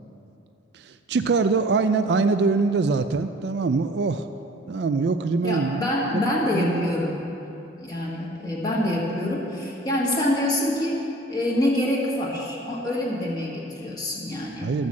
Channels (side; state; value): both; normal; correlation 0.48